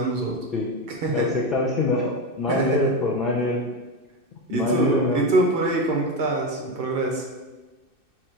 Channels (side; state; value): left; late; 2.6 ms